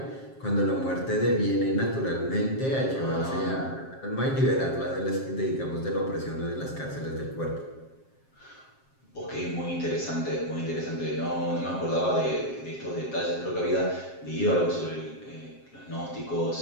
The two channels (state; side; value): late; right; 7.5 ms